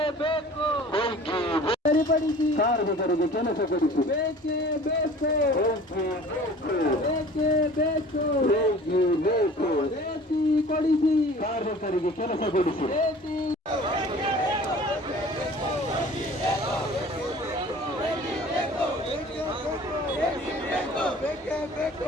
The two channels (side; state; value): both; normal; correlation 0.46